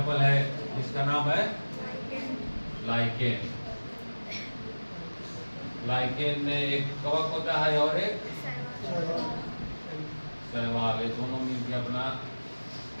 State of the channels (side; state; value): both; inverted; correlation -1.00